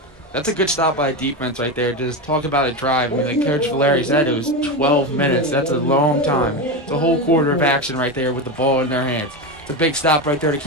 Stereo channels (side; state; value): both; normal; correlation 0.16